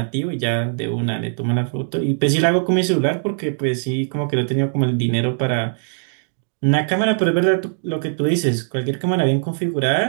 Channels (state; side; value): silent; left; digital silence